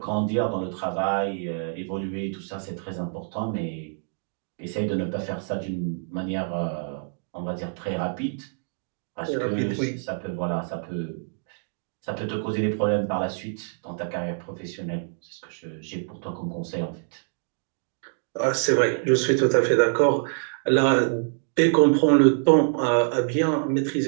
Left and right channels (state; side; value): silent; left; digital silence